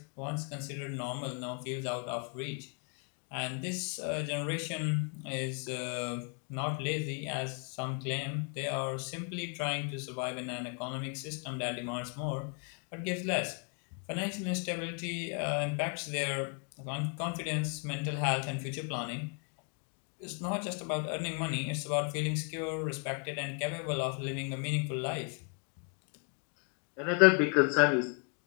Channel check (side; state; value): right; quieter; 39.8 dB